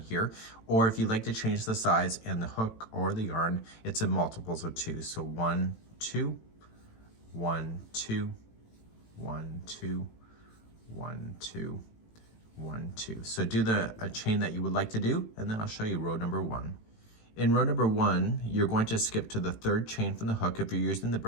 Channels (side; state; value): right; late; 18 ms